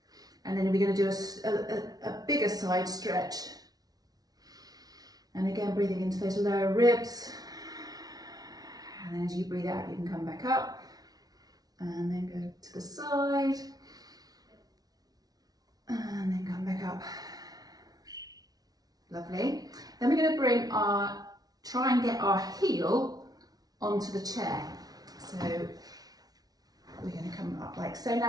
and then we're going to do a bigger side stretch. And again, breathing into those lower ribs. And then as you breathe out, you can come back up and then go to the side and then come back up. Lovely. Then we're going to try and get our heel onto the chair. So we're going to come up like so.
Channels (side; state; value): left; late; 0.19 ms